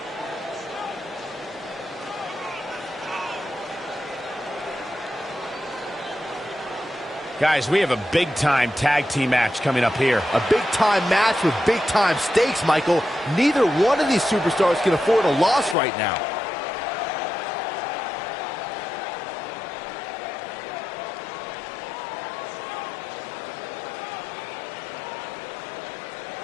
Guys, we have a big-time tag team match coming up here. A big-time match with big-time stakes, Michael. Neither one of these superstars can afford a loss right now.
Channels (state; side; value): drops out; right; at 15.8 s